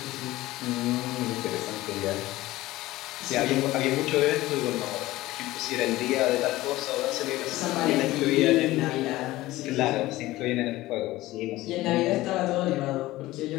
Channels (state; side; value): quieter; right; 17.6 dB